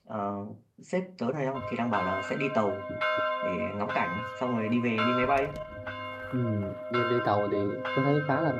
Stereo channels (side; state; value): both; identical; correlation 1.00